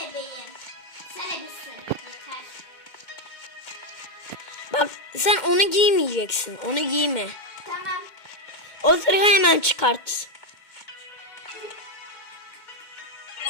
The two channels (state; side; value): late; right; 2.1 ms